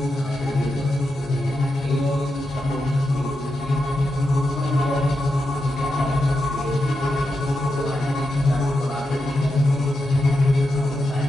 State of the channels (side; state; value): both; normal; correlation 0.87